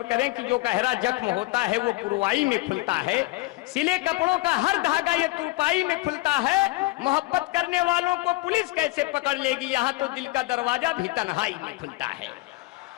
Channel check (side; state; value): right; quieter; 21.4 dB